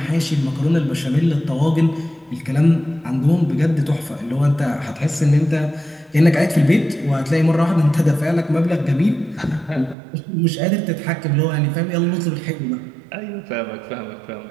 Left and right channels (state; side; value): drops out; left; at 10.0 s